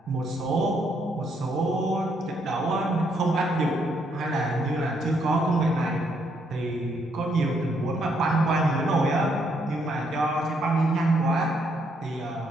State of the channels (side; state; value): both; normal; correlation 0.73